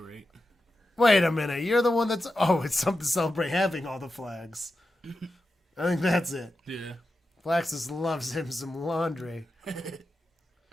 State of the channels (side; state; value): both; normal; correlation 0.91